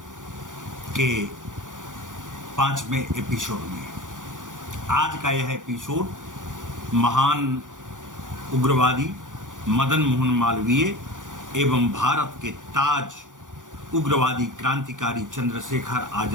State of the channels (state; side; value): late; left; 0.87 ms